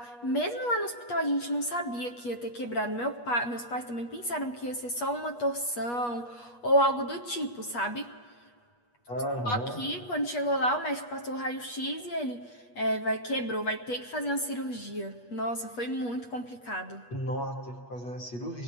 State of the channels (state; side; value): late; right; 8.3 ms